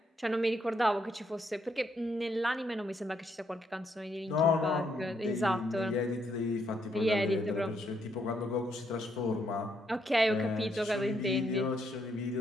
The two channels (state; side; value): normal; both; correlation 0.75